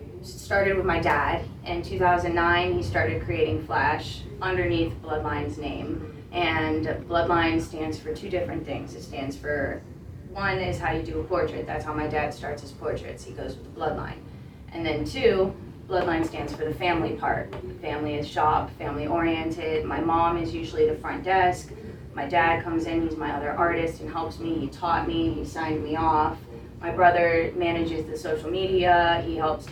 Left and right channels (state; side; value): identical; both; correlation 1.00